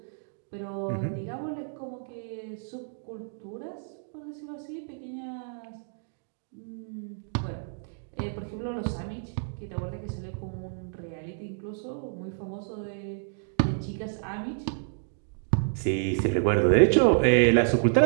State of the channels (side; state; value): left; silent; digital silence